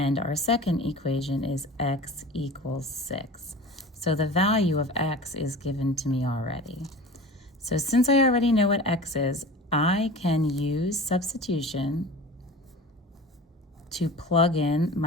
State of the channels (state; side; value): normal; both; correlation 0.37